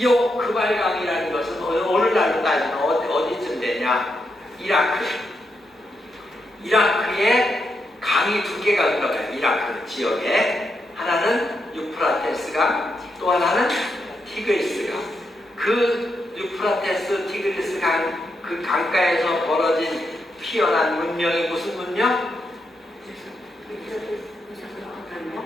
그발강이라는 것은 어느 날로 따지면 어디쯤 되냐? 이라크에 강이 두 개가 흘러가요. 이라크 지역에 하나는 유프라테스 강, 또 하나는 티그리스 강. 그 유프라테스, 티그리스 강, 그 강가에서 벌어진 피어난 문명이 무슨 문명?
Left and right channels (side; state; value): both; normal; correlation 0.82